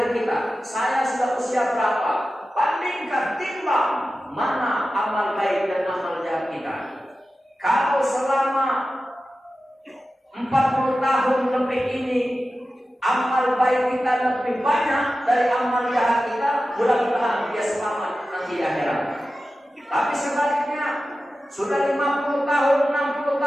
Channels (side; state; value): both; normal; correlation 0.94